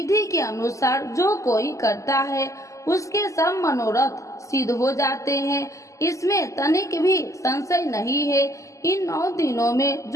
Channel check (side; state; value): right; late; 0.16 ms